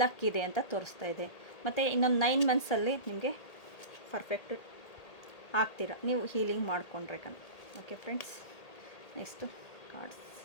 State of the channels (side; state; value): right; late; 1.8 ms